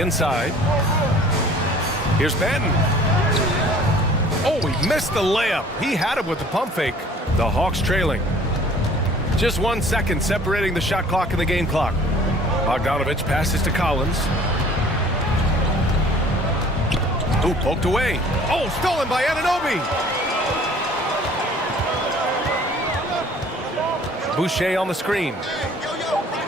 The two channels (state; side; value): normal; both; correlation 0.51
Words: Here's Benton. Oh, he missed the layup. He had it with the pump fake. The Hawks trailing. Just 1 second separating the shot clock and the game clock. Bogdanovich passes to Collins. Ooh, poked away. Oh, stolen by Anunoby. Boucher on the screen.